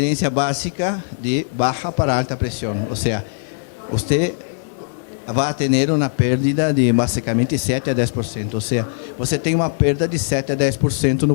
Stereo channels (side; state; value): right; silent; digital silence